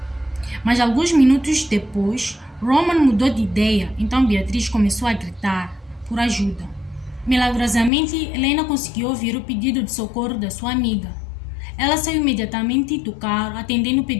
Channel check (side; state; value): right; drops out; at 7.9 s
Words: Mas alguns minutos depois, Roman mudou de ideia, então Beatriz começou a gritar por ajuda. Milagrosamente, Helena conseguiu ouvir o pedido de socorro da sua amiga. Ela saiu imediatamente do carro, atendendo o